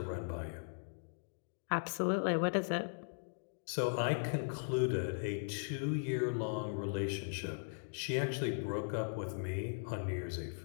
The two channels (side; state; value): right; silent; digital silence